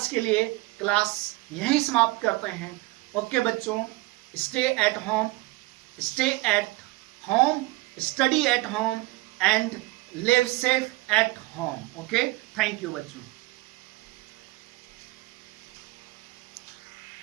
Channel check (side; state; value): left; quieter; 21.1 dB